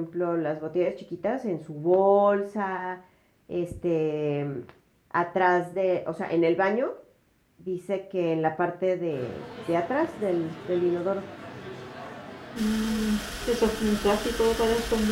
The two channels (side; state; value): both; identical; correlation 1.00